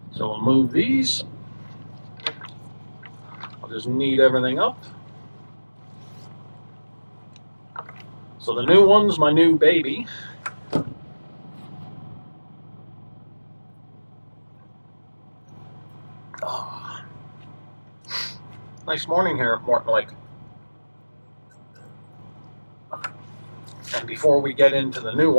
So we'll move these. I'll just knead everything up. So the new one's my new baby. Oh. Nice morning here at Morton Lake. And before we get into the new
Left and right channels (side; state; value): both; inverted; correlation -1.00